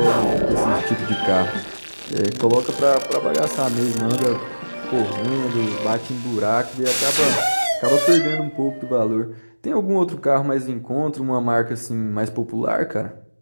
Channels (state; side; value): inverted; both; correlation -1.00